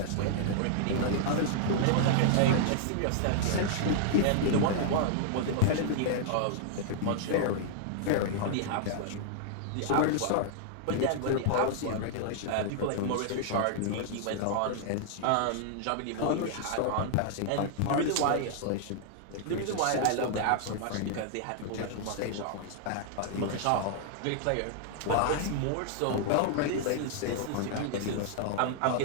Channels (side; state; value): both; different; correlation -0.01